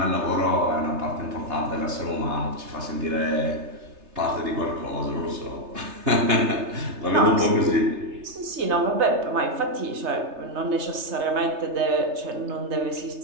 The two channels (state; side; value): late; left; 3.3 ms